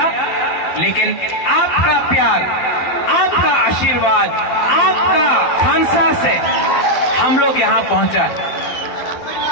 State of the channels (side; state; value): right; late; 12 ms